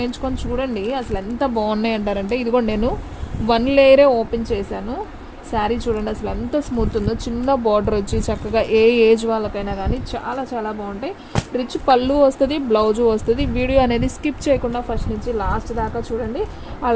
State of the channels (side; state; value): both; identical; correlation 1.00